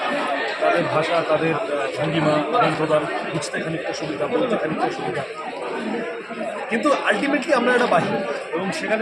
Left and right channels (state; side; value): identical; both; correlation 1.00